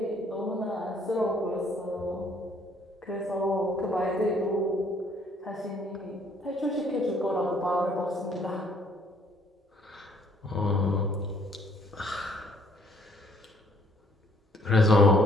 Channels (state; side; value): normal; both; correlation 0.64